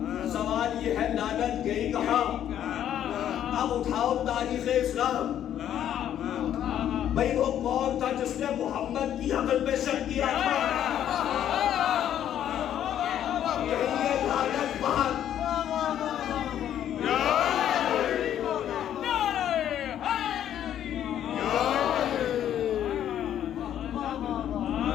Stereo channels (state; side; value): quieter; right; 10.6 dB